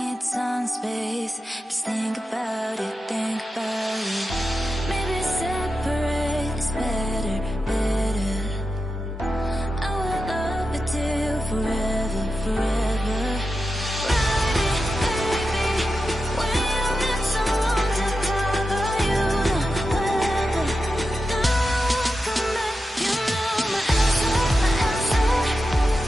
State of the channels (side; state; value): both; normal; correlation 0.90